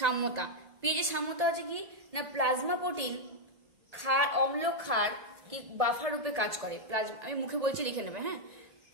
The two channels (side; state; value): left; late; 1.9 ms